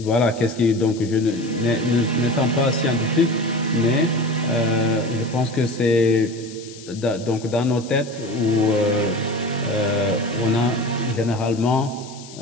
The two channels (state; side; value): noise; left; hiss, 18 dB below the sound